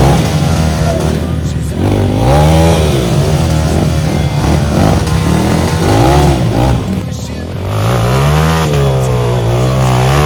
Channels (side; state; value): both; identical; correlation 1.00